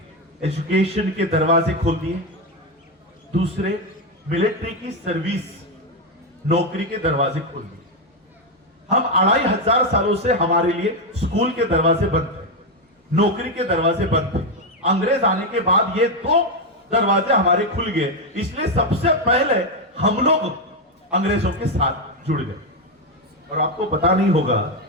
एजुकेशन के दरवाजे खोल दिए, दूसरे मिलिट्री की सर्विस, नौकरी के दरवाजे खोल दिए। हम 2500 सालों से हमारे लिए स्कूल के दरवाजे बंद थे, नौकरी के दरवाजे बंद थे। अंग्रेज आने के बाद ये दो दरवाजे हमारे खुल गए, इसलिए सबसे पहले हम लोग अंग्रेजों के साथ जुड़ गए। और आपको पता नहीं होगा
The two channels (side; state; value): both; normal; correlation 0.06